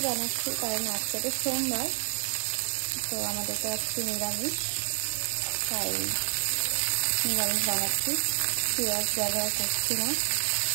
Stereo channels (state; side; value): silent; left; digital silence